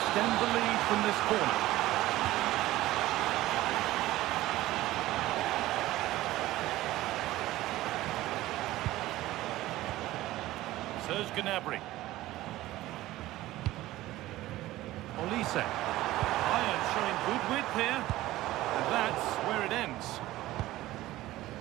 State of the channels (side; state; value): left; quieter; 16.4 dB